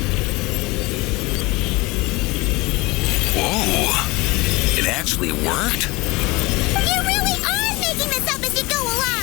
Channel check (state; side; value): quieter; right; 23.6 dB